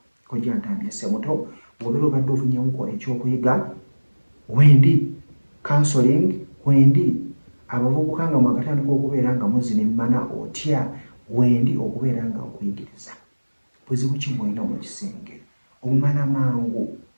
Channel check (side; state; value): both; inverted; correlation -1.00